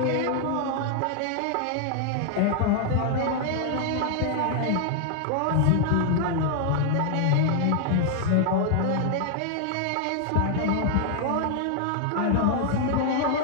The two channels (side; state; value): both; different; correlation 0.00